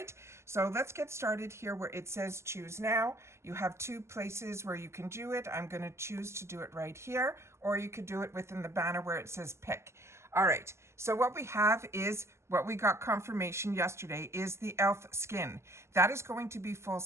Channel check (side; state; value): left; late; 0.13 ms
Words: so let's get started here where it says choose now. You have two places where you can do it. I'm going to choose to do it right here, or you could do it within the banner where it says pick. All right, so what we have is what we got confirmation yesterday is the elf skin. That is going to be full